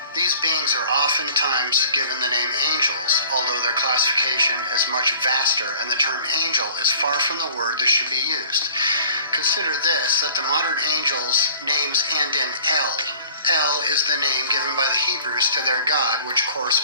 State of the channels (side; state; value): both; inverted; correlation -0.49